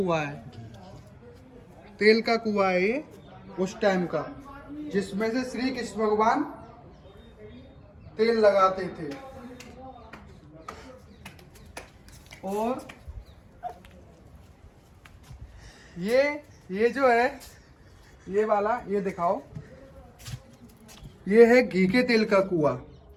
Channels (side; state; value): both; identical; correlation 1.00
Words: है। तेल का कुआं है ये उस टाइम का, जिसमें से श्री कृष्ण भगवान तेल लगाते थे। और ये जो है ये वाला, ये दिखाओ, ये है घी के तेल का कुआं।